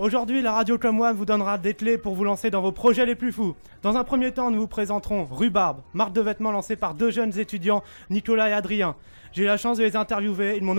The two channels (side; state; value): both; inverted; correlation -1.00